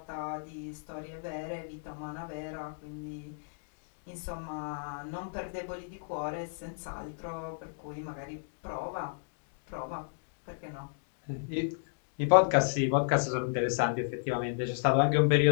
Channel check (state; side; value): silent; right; digital silence